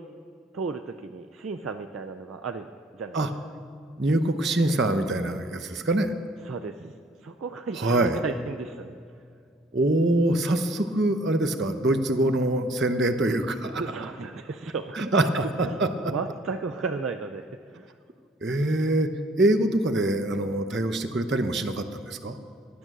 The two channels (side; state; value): both; normal; correlation 0.58